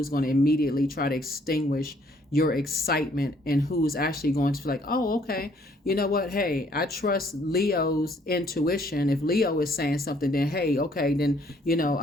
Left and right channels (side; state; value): both; normal; correlation 0.64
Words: going to immediately try to extinguish your excitement and who's actually going to be like, oh, okay, you know what, hey, I trust Leo's intuition. If Leo is saying something, then hey, okay, then, you know,